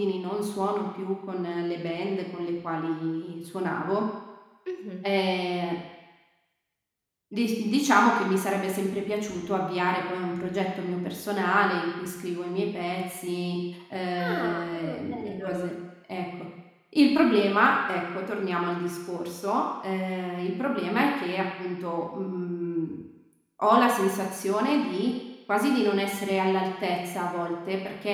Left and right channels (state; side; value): identical; both; correlation 1.00